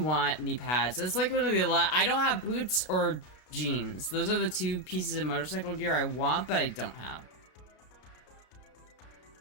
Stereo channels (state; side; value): late; right; 32 ms